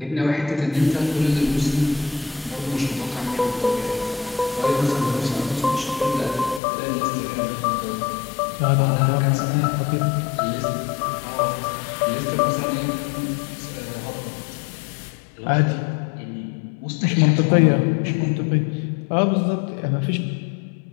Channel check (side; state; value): right; drops out; at 6.6 s